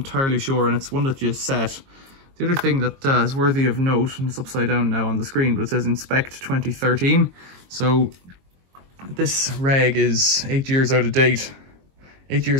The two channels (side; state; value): left; late; 22 ms